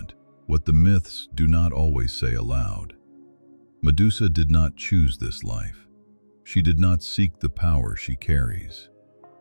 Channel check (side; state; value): both; inverted; correlation -1.00